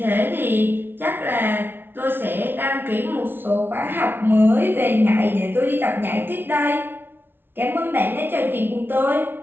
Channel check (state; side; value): late; left; 0.10 ms